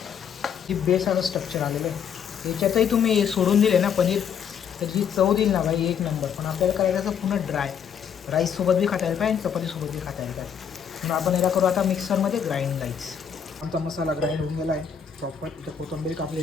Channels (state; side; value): quieter; right; 7.7 dB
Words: जी बेस आता स्ट्रक्चर आलेलं आहे याच्यातही तुम्ही सोडून दिले ना पनीर तर जी चव देईल ना भाई एक नंबर. पण आपल्याला करायचं असं पूर्ण ड्राय. राईससोबत बी खाता येईल पाहिजे, चपातीसोबत बी खाता येईल पाहिजे. म्हणून आपण याला करू आता मिक्सरमध्ये ग्राइंड गाईच. आमचा मसाला ग्राइंड होऊन गेला आहे प्रॉपर. इथं कोथिंबीर